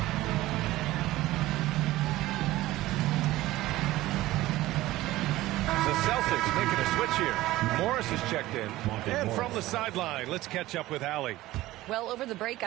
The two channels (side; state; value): left; quieter; 16.9 dB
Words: The Celtics making a switch here. Morris has checked in. And from the sideline, let's catch up with Allie. Well, over the break,